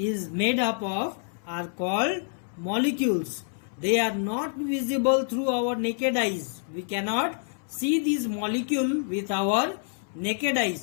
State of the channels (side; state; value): right; silent; 60 dB below the other